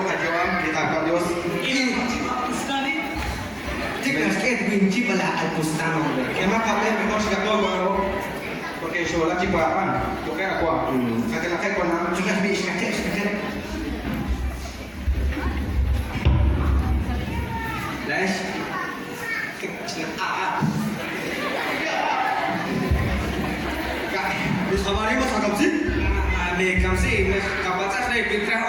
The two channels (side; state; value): both; identical; correlation 1.00